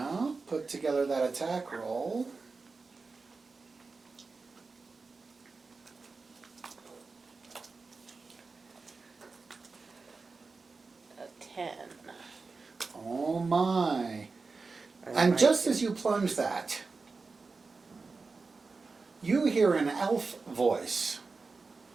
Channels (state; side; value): quieter; left; 4.2 dB